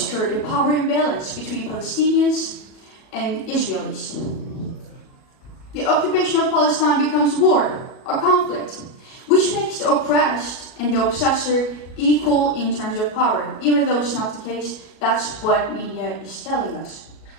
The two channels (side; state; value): right; late; 37 ms